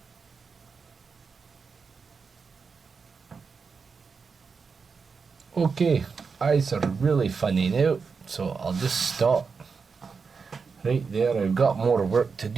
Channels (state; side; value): quieter; left; 5.2 dB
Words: Okay, eyes are really funny now, so I'll just stop right there. I've got more work to